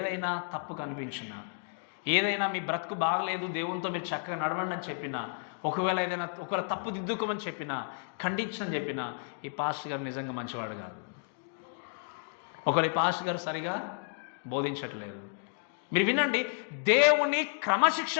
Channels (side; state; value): right; silent; digital silence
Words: తప్పు కనిపించినా, ఏదైనా మీ బ్రతుకు బాగలేదు, దేవునితో మీరు చక్కగా నడవండి అని చెప్పినా, ఒకవేళ తప్పు దిద్దుకోమని చెప్పినా, ఖండించని చెప్పినా, ఈ పాస్టర్ గారు నిజంగా మంచివాడు కాదు. ఒకవేళ ఈ పాస్టర్ గారు సరిగా బోధించట్లేదు. మీరు వినండి. దేవుని